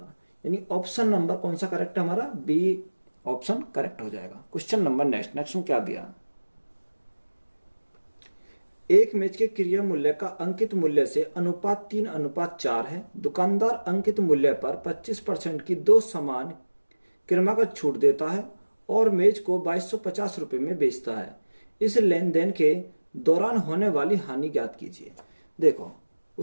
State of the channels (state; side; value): inverted; both; correlation -1.00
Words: यानी ऑप्शन नंबर कौन सा करेक्ट है हमारा? बी ऑप्शन करेक्ट हो जाएगा। क्वेश्चन नंबर नेक्स्ट में क्या दिया? एक मेज के क्रय मूल्य का अंकित मूल्य से अनुपात 3:4 है। दुकानदार अंकित मूल्य पर 25% की 2 समान क्रमागत छूट देता है और मेज को 2250 रुपए में बेचता है। इस लेन देन के दौरान होने वाली हानि ज्ञात कीजिए। देखो